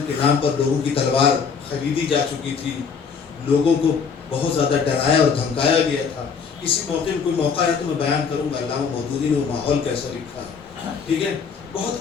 کے نام پر لوگوں کی تلوار خریدی جا چکی تھی، لوگوں کو بہت زیادہ ڈرایا اور دھمکایا گیا تھا. کسی موقع میں کوئی موقع ہے تو میں بیان کروں گا علامہ مودودی نے وہ ماحول کیسا لکھا ہے. ٹھیک ہے،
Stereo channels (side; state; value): right; quieter; 6.0 dB